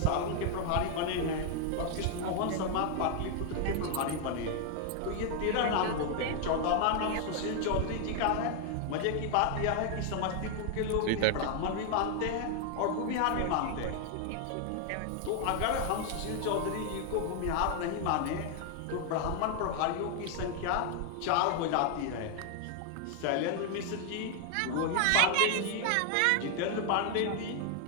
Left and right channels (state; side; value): different; both; correlation 0.00